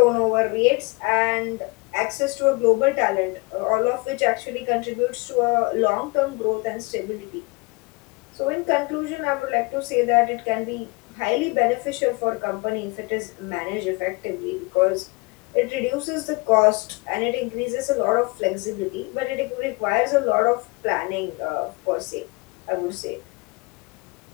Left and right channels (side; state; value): right; quieter; 27.5 dB